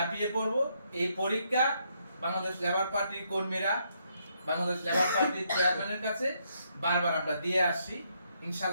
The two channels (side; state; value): both; inverted; correlation -0.75